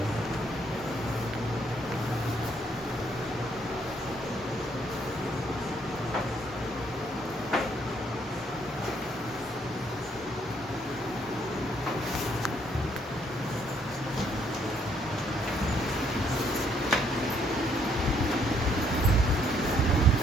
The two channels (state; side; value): normal; both; correlation 0.68